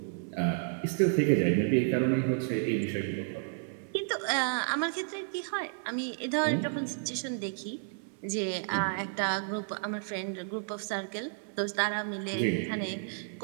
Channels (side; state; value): left; silent; 57 dB below the other